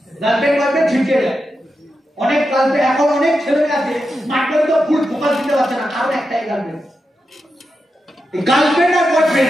গার্লফ্রেন্ড বয়ফ্রেন্ড ছিটকে যায়। অনেক গার্লফ্রেন্ড এখন অনেক ছেলে আছে স্মার্ট ভ্যালু তো ফুল ফোকাস দিতে পারছে না, কারণ একটাই গার্লফ্রেন্ড। এই গার্লফ্রেন্ড আর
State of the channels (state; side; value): normal; both; correlation 0.88